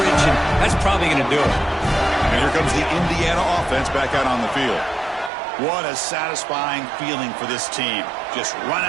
and that's probably going to do it. And here comes the Indiana offense back out on the field. What a satisfying feeling for this team. Just run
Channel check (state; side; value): drops out; left; at 5.3 s